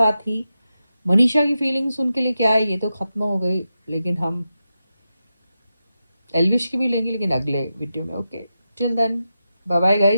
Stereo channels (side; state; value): both; inverted; correlation -0.90